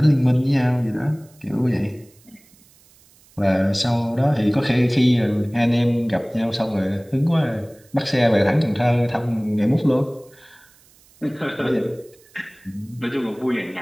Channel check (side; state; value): right; noise; hiss, 29 dB below the sound